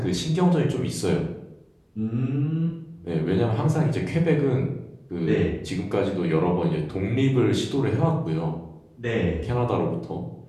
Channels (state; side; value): identical; both; correlation 1.00